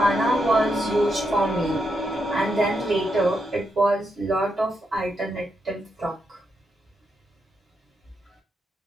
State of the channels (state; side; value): normal; both; correlation 0.82